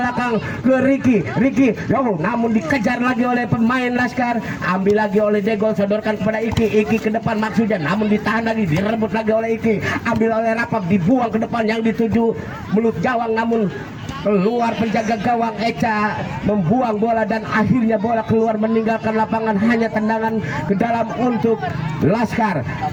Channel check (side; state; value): both; identical; correlation 1.00